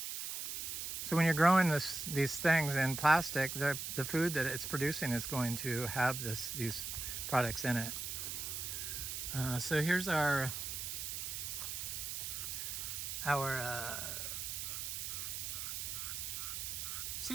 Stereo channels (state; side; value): noise; right; hiss, 4 dB below the sound